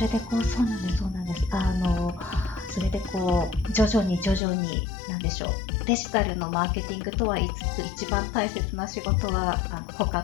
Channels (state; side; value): drops out; right; at 4.4 s